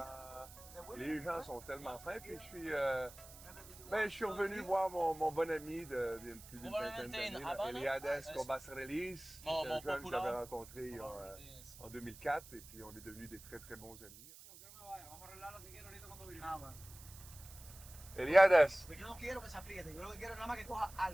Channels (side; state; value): right; noise; hiss, 17 dB below the sound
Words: Les gens sont tellement fins. Puis, je suis revenu voir mon bon ami de plus d'une vingtaine d'années, Eliades Cobas-Relis. C'est un jeune que j'avais rencontré en 2004. Et puis, on est devenus des très, très bons amis. Eliades. Yo no quiero que se apriete, yo lo que quiero es nada más que coja